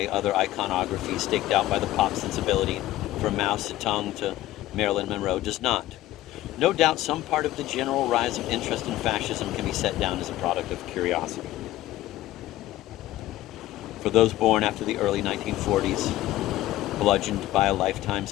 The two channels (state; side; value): quieter; right; 15.5 dB